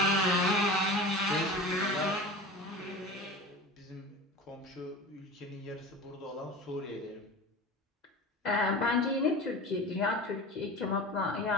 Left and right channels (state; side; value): normal; both; correlation 0.33